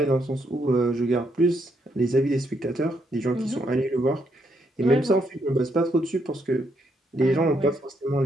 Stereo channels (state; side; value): normal; both; correlation 0.76